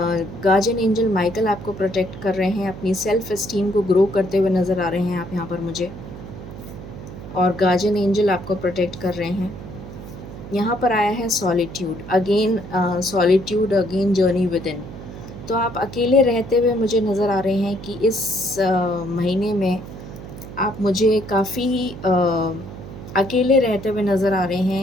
guardian angel Michael आपको प्रोटेक्ट कर रहे हैं, अपनी सेल्फ एस्टीम को ग्रो करते हुए नज़र आ रहे हैं आप यहाँ पर मुझे, और गार्जियन एंजल आपको प्रोटेक्ट कर रहे हैं। यहाँ पर आया है solitude again journey with in. तो आप अकेले रहते हुए मुझे नज़र आ रहे हैं कि इस महीने में आप मुझे काफ़ी अकेले रहते हुए नज़र आ रहे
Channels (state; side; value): noise; right; hum, 13 dB below the sound